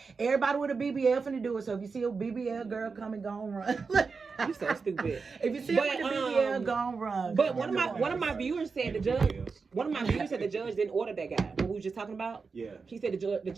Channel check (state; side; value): quieter; left; 4.8 dB